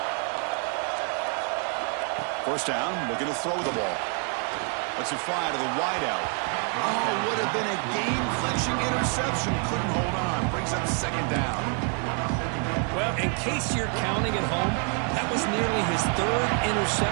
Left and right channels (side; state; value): left; quieter; 38.8 dB